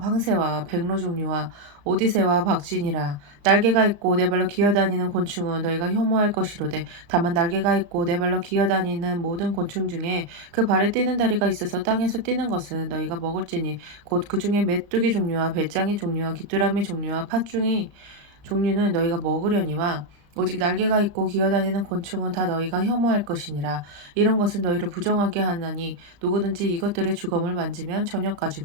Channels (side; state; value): left; late; 35 ms